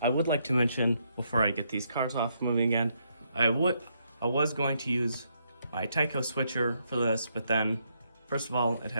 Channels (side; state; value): both; inverted; correlation -0.76